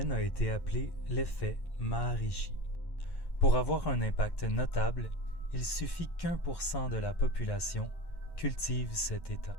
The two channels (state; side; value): late; right; 1.1 ms